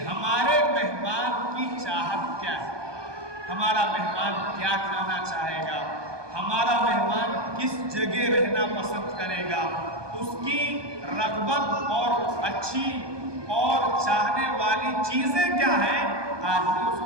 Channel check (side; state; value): left; late; 1.2 ms